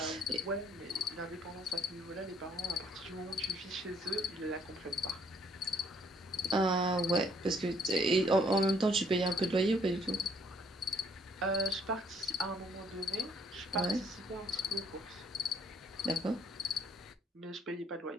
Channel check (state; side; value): normal; both; correlation 0.64